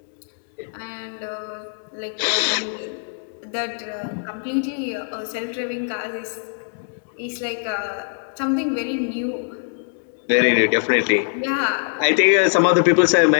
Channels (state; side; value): silent; right; digital silence